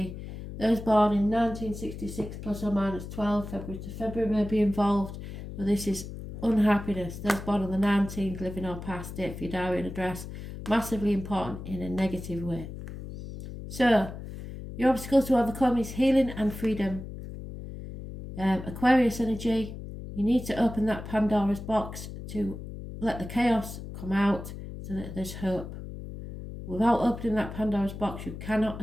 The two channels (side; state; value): left; noise; hum, 10 dB below the sound